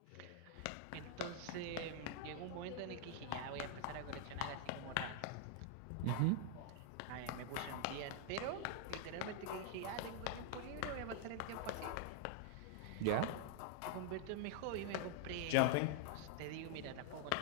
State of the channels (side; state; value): both; different; correlation 0.00